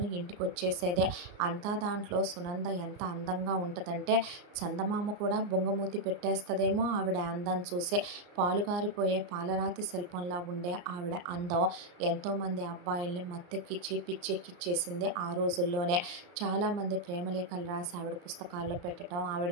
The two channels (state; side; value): late; left; 34 ms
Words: ఇంటికి వచ్చేసేదే. అంతా దాంట్లో సునంద ఎంత అందంగా ఉంటుందంటే చందమామ కూడా బొంగమూతి పెట్టేస్తుందేమో ఆవిడ అందం చూసి. పాలుగారిపోయే పాలరాతి శిల్పంలా ఉండే ఆవిడ అందం ఎంతోమంది అబ్బాయిల్ని మత్తెక్కిచ్చి పిచ్చెక్కిచ్చేసింది ఆ రోజుల్లోనే. చాలామంది ప్రేమలేఖలు రాసి ఆవిడ పుస్తకాల్లో పెట్టడం, ఆవిడ